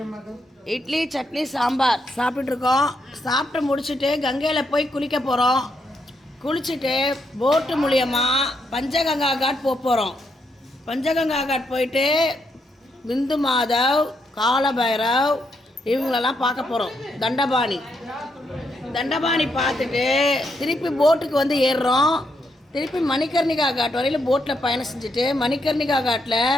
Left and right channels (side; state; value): both; normal; correlation 0.78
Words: இட்லி சட்னி சாம்பார் சாப்பிட்டுருக்கோம். சாப்பிட்டு முடிச்சுட்டு கங்கையில் போய் குளிக்க போகிறோம். குளிச்சுட்டு போட்டு மூலியமாக பஞ்சகங்கா காட் போகிறோம். பஞ்சகங்கா காட் போயிட்டு பிந்து மாதவ், காலபைரவ் இவங்களெல்லாம் பார்க்க போகிறோம். தண்டபாணி பார்த்துட்டு திருப்பி போட்டுக்கு வந்து ஏறுறோம். திருப்பி மணிகர்ணிகா காட் வரையில் போட்டில் பயணம் செஞ்சுட்டு மணிகர்ணிகா